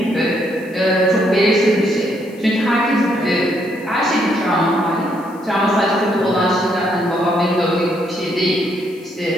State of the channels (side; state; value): left; noise; hiss, 28 dB below the sound